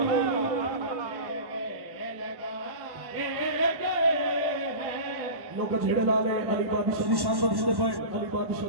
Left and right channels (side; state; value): left; late; 1.1 ms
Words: लोग झेड़े ला ले अली बादशाह दी शान बढ़दे पए अली बादशाह